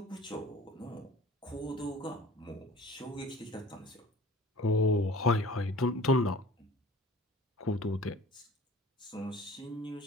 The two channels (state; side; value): normal; both; correlation 0.45